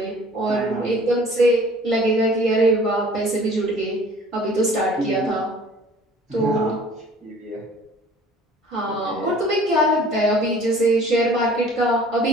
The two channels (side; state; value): both; normal; correlation 0.50